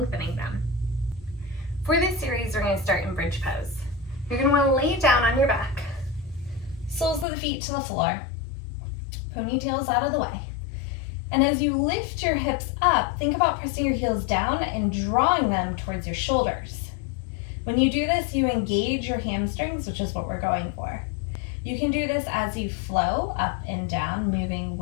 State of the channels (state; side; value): drops out; right; at 7.2 s